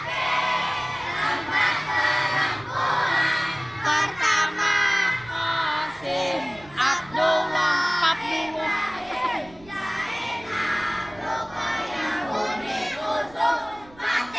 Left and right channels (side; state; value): right; noise; rumble, 24 dB below the sound